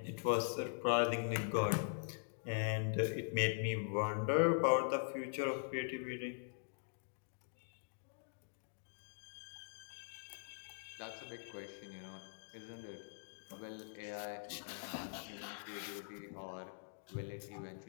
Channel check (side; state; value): right; silent; digital silence